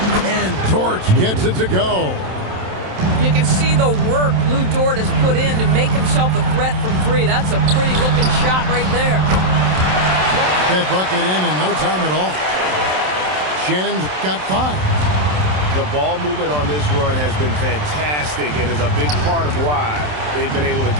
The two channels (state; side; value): late; left; 27 ms